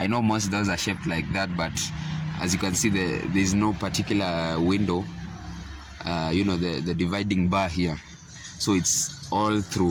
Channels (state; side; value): identical; both; correlation 1.00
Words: know most doors are shaped like that, but as you can see, there's no particular window, the dividing bar here, so it's all